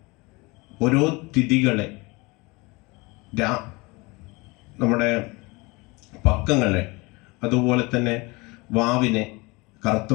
ഓരോ തിഥികളെ, നമ്മുടെ പക്കങ്ങളെ, അതുപോലെ തന്നെ വാവിനെ, കറുത്ത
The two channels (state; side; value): quieter; right; 25.2 dB